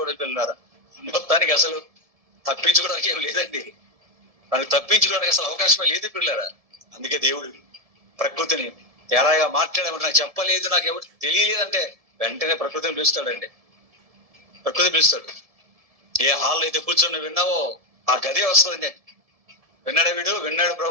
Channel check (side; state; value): left; late; 1.7 ms